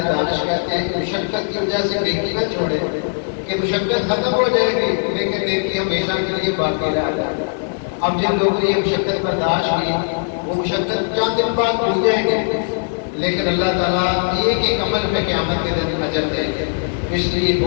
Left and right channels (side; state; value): right; silent; digital silence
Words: دانش کہتے ہیں کہ مشقت کی وجہ سے نیکی نہ چھوڑے، کہ مشقت ختم ہو جائے گی لیکن نیکی ہمیشہ کے لیے باقی رہ جائے گا۔ اب جن لوگوں نے یہ مشقت برداشت کی وہ مشقت چند دن بعد بھول جائیں گے، لیکن اللہ تعالیٰ ایک عمل پہ قیامت کے دن اجر دیں گے۔ اس لیے